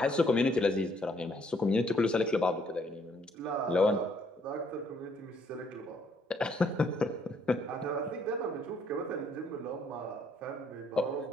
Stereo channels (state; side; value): normal; both; correlation 0.67